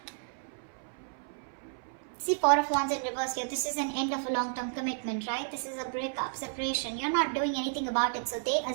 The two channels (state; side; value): silent; left; 56 dB below the other